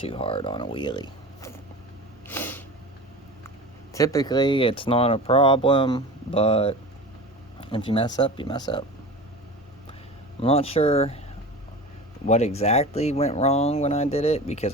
hard on a wheelie. Typically it's not a problem, but if you mess up, you mess up. I'm not sure what exactly went wrong when I did it, because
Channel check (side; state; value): both; normal; correlation 0.33